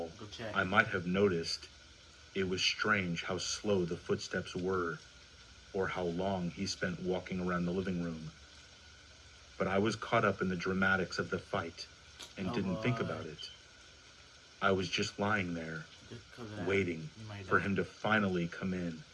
I might have noticed. It was strange how slow the footsteps were, or how long he spent walking around the living room. But I was caught up in the dramatics of the fight, and didn't think about it. I was just lying there, Just 'cause of that, waiting you might for die. him to finally come in.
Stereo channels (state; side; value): identical; both; correlation 1.00